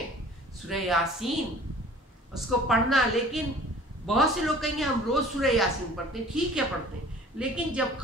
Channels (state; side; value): normal; both; correlation 0.47